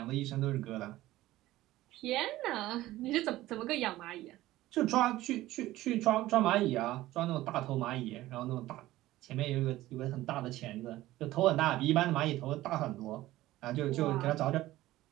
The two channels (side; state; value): left; quieter; 16.2 dB